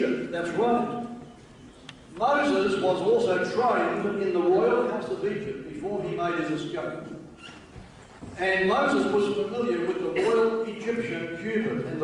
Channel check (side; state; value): both; identical; correlation 1.00